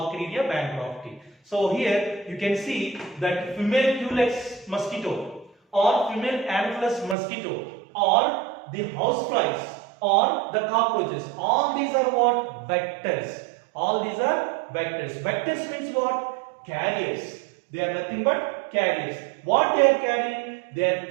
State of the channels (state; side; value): drops out; left; at 7.2 s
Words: bancrofti. So here you can see that female Culex mosquito or female Anopheles mosquito or the houseflies or the cockroaches, all these are what? Vectors. Vectors means what? Carriers. They are nothing but carriers. What they are carrying? They are